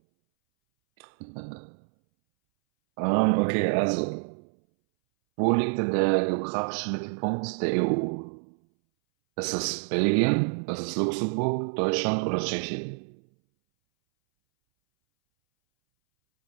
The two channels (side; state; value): left; silent; 60 dB below the other